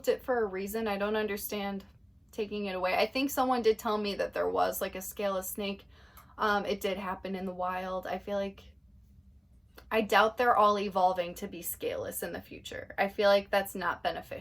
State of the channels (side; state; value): both; identical; correlation 1.00